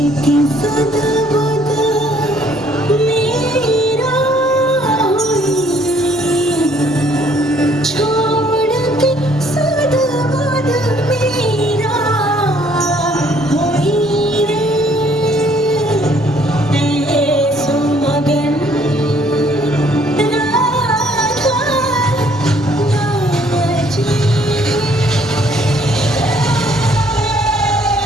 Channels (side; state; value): both; normal; correlation 0.63